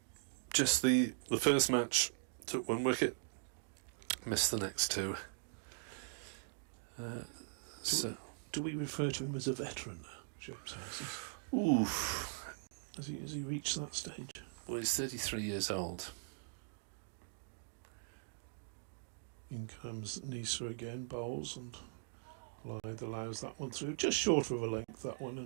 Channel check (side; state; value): left; silent; digital silence